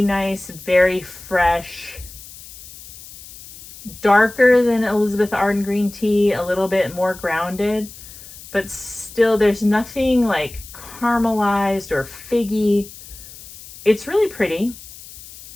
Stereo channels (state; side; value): noise; left; hiss, 17 dB below the sound